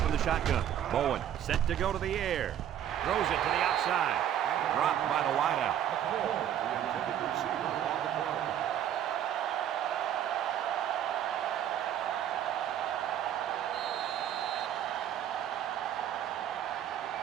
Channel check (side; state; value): left; quieter; 10.5 dB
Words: in the shotgun. Bowen set to go to the air. Throws it to the outside. Dropped by the wideout.